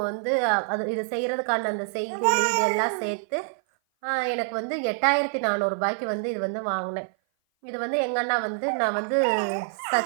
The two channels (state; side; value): silent; left; 57 dB below the other